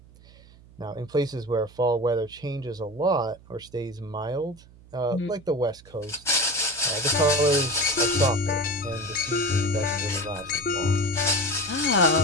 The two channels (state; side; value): noise; right; hum, 24 dB below the sound